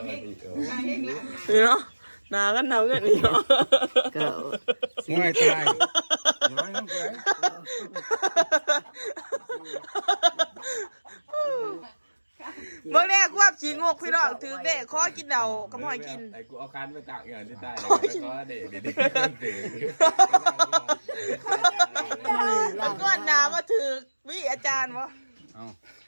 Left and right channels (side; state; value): both; inverted; correlation -1.00